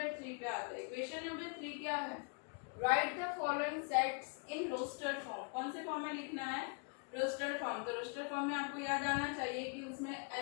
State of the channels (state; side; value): quieter; right; 36.7 dB